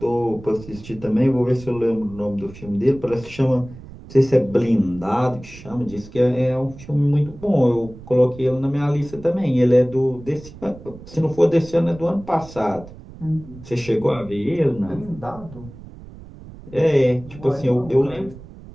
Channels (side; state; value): right; noise; rumble, 17 dB below the sound